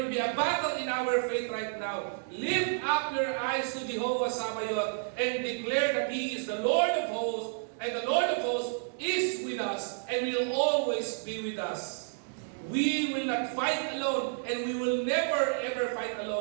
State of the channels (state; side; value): silent; left; digital silence